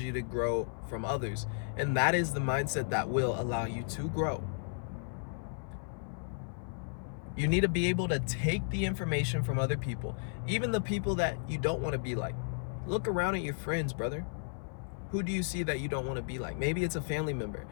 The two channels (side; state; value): right; silent; 55 dB below the other